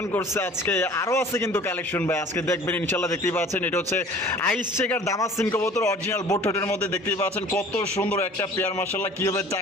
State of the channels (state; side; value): normal; both; correlation 0.47